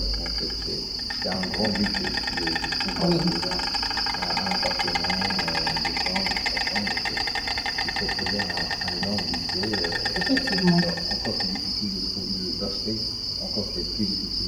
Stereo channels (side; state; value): both; identical; correlation 1.00